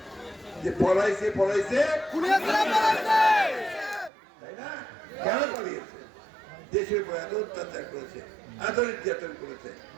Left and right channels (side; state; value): left; drops out; at 4.1 s